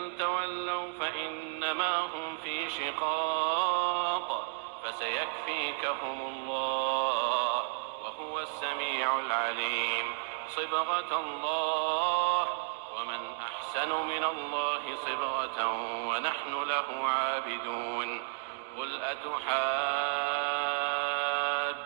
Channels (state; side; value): silent; left; 56 dB below the other